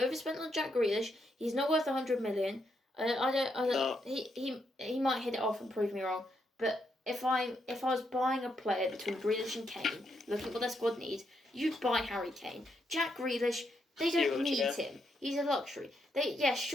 on Jack Grealish. He's not worth 100 million. I don't. No. He might hit it off and prove me wrong. But if I was buying a player between Grealish and Kane, looking at what their squad needs, you'd buy Harry Kane. Jack Grealish, they don't need him. He's a luxury. He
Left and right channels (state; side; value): normal; both; correlation 0.79